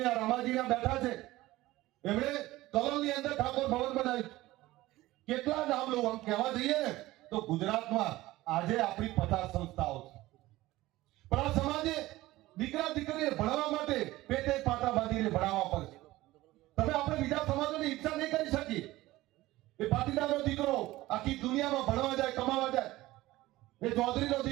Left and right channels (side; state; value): left; quieter; 17.6 dB